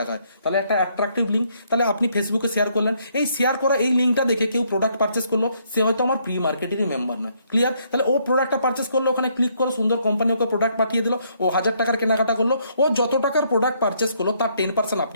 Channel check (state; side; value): inverted; both; correlation -0.70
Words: তাহলে একটা অ্যাট্রাকটিভ লিঙ্ক, তাহলে আপনি ফেসবুকে শেয়ার করলেন। এই শেয়ার করা এই লিঙ্কটা দেখে কেউ প্রোডাক্ট পারচেস করলো, সে হয়তো আমার প্রি মার্কেটিং মেম্বার নয়। ক্লিয়ার? তাহলে ও প্রোডাক্টটা পারচেস করলো, ওখানে ক্লিক করলো, সুন্দর কোম্পানি ওকে প্রোডাক্ট পাঠিয়ে দিল, ও 1,000 টাকার কেনাকাটা করলো। ও যত টাকার প্রোডাক্ট পারচেস করলো তার 10%